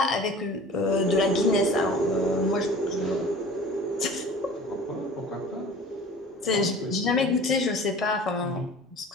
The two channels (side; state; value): both; normal; correlation 0.42